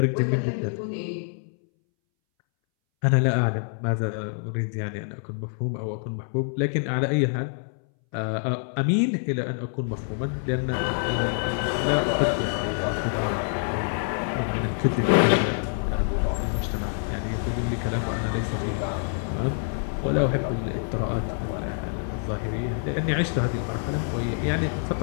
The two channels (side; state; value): right; silent; 61 dB below the other